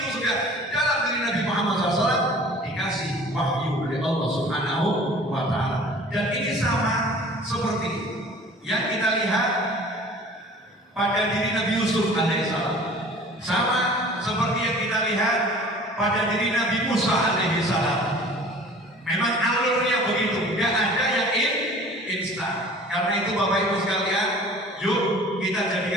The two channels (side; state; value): both; normal; correlation 0.46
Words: sudah dalam diri Nabi Muhammad SAW, dikasih wahyu oleh Allah Subhanahu wa Ta'ala. Dan ini sama seperti yang kita lihat pada diri Nabi Yusuf alaihissalam, sama seperti yang kita lihat pada diri Nabi Musa alaihissalam. Memang alurnya begitu, tidak ada yang instan. Karena itu Bapak Ibu sekalian, yuk kita